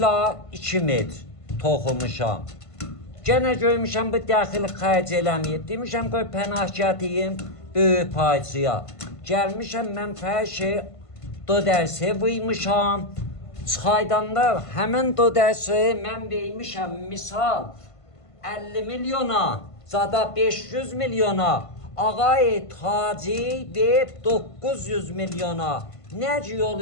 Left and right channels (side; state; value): right; late; 1.5 ms